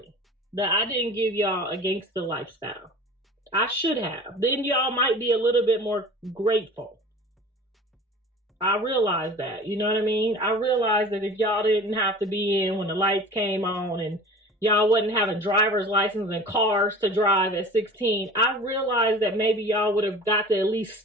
that I didn't give y'all a gangster lifestyle. I should have. Then y'all might be a little bit more grateful. I realize that, you know what I mean? I realize that if y'all didn't have to be in when the lights came on and y'all wasn't having driver's license and cars to drive at 16, I realized that maybe y'all would have got to at least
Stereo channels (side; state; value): both; normal; correlation 0.40